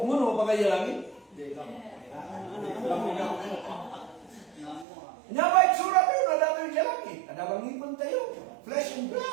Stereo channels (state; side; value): drops out; left; at 4.9 s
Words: mo no pagkaya langit? Nya ba itsura tayo na dato yung langit? Ada bang ngipon tayo? Flesh and